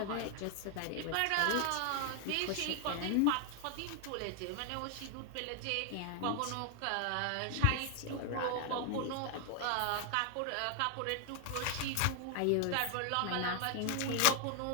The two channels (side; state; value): both; different; correlation 0.00